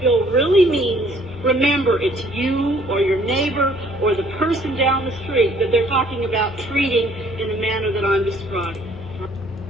really means, remember it's you or your neighbor or the person down the street that they're talking about treating in the manner that I'm describing.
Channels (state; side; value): noise; left; hum, 19 dB below the sound